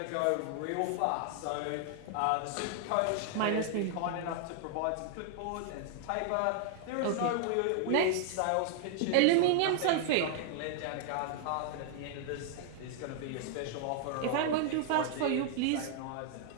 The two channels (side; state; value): both; different; correlation -0.01